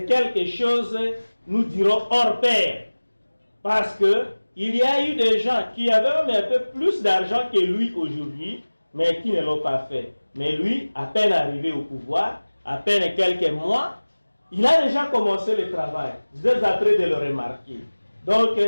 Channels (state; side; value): inverted; both; correlation -1.00